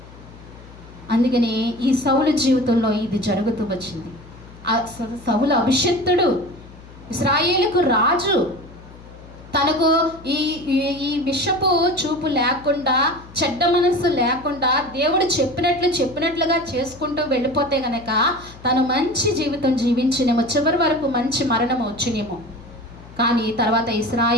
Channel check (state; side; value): noise; left; hum, 20 dB below the sound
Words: అందుకని ఈ సౌలు జీవితంలో ఇది జరుగుతూ వచ్చింది. సౌలు అభిషిక్తుడు, ఇశ్రాయేలుకు రాజు. తనకు ఈ విషపు చూపు లేకుండా, చెడ్డ మనసు లేకుండా దేవుడు చెప్పినట్లుగా చేసుకుంటూ వెళ్ళిపోతే గనక తను మంచి జీవితం జీవించినేమో, చివరి వరకు మంచి మరణం వచ్చినేమో. కానీ తర్వాత